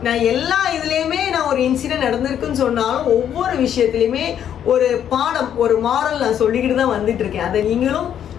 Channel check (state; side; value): quieter; right; 9.6 dB